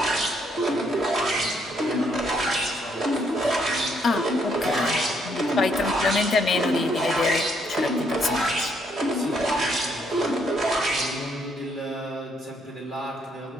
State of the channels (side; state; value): both; normal; correlation 0.71